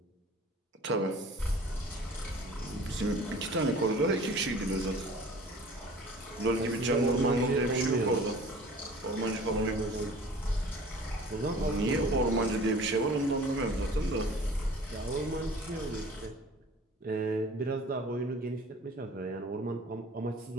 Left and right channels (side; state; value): both; normal; correlation 0.46